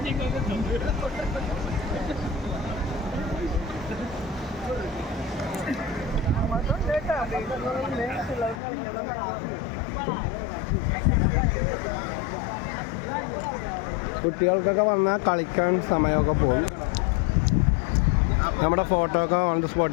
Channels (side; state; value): right; drops out; at 8.6 s